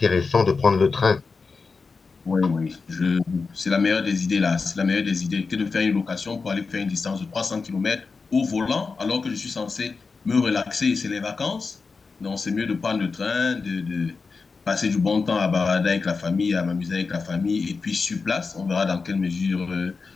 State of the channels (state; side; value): quieter; right; 4.6 dB